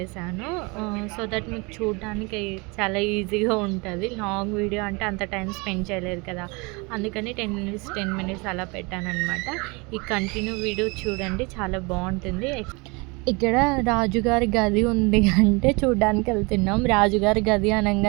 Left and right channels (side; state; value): left; quieter; 28.2 dB